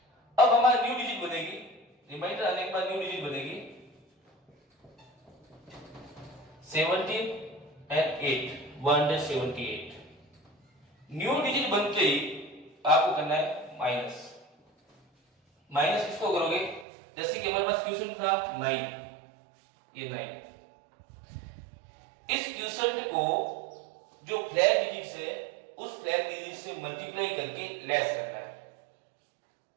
अब हमारी न्यू डिजिट बनेगी रिमाइंडर आने के बाद न्यू डिजिट बनेगी 17 एंड 8 178। न्यू डिजिट बनते ही आपको करना है माइनस। माइनस किसको करोगे, जैसे कि हमारे पास क्वेश्चन था 9, ये 9, इस क्वेश्चन को जो फ्लैग डिजिट है उस फ्लैग डिजिट से मल्टीप्लाई करके लेस करना है।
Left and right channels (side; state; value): left; drops out; at 16.9 s